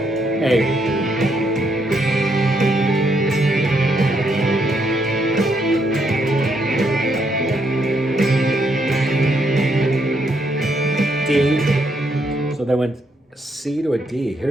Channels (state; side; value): normal; both; correlation 0.75